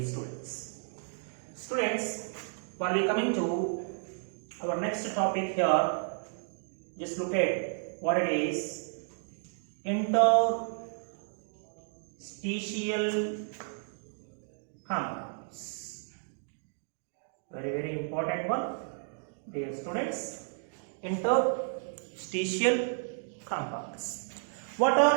students. Students, while we coming to our next topic here, just look at what it is. Interstitial compounds. Very important one, dear students. Interstitial compounds. What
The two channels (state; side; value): silent; left; digital silence